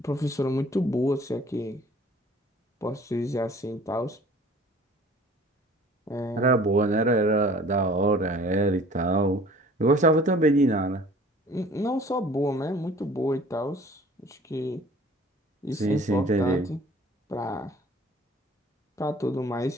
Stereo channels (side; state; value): both; normal; correlation 0.50